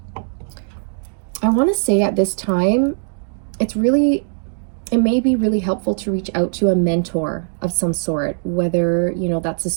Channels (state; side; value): silent; left; digital silence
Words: I want to say at this time, it may be really helpful to reach out to a mentor of some sort, whether, you know, that's a